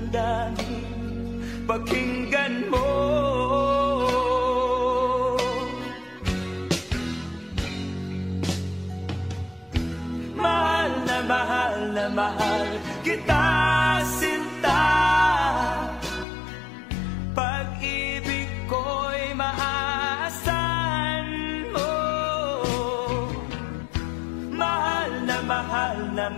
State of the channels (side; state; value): right; drops out; at 16.2 s